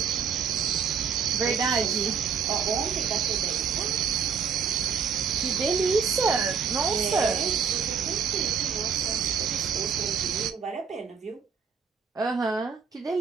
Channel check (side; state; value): left; quieter; 6.7 dB